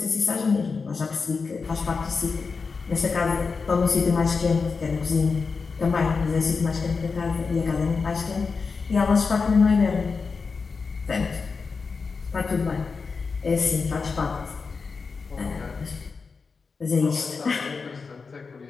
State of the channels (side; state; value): right; quieter; 4.8 dB